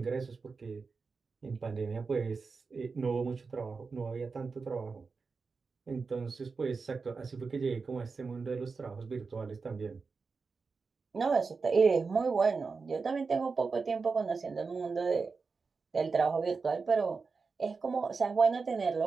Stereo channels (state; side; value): quieter; left; 4.7 dB